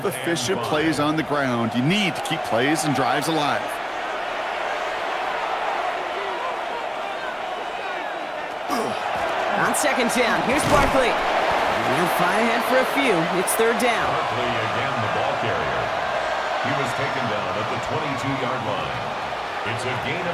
efficient plays on the ground. You need to keep plays and drives alive. On 2nd down, here's Barkley. And they'll fight ahead for a few. It's 3rd down. Barkley again the ball carrier. He was taken down at the 22-yard line. It's a gain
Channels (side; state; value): both; identical; correlation 1.00